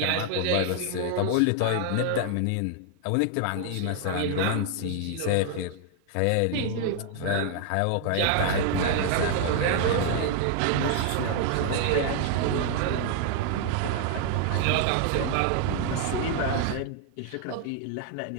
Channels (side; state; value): both; different; correlation 0.00